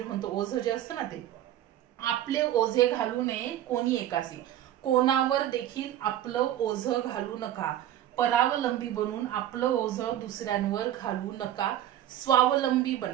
म्हणतो, ओझं जे असतं ना ते. आपले ओझे घालू नये कोणी एकासी. कोणावर देखील आपलं ओझं घालू नका. परावलंबी बनून आपलं ओझं दुसऱ्यांवर घालू नका. स्वावलंबी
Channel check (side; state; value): left; quieter; 12.2 dB